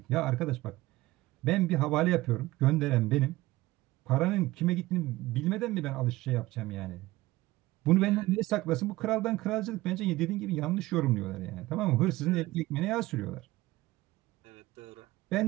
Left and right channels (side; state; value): left; quieter; 18.4 dB